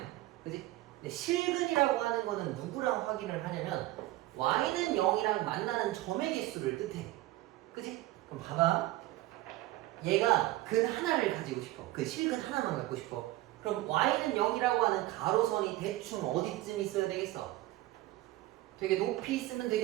그지? 근데 실근이라고 하는 거는 누구랑 확인을 하냐면 y는 0이랑 만나는 점의 개수를 뜻해. 그지? 그럼 봐봐. 얘가 근 하나를 가지고 싶어. 그 실근 하나만 갖고 싶어. 그럼 y는 0이라고 하는 가로선이 대충 어디쯤 있어야 되겠어? 되게 높이 있으면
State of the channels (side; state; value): left; quieter; 17.0 dB